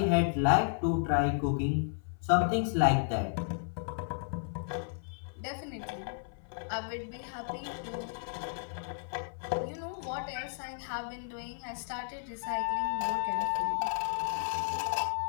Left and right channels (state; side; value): silent; right; 56 dB below the other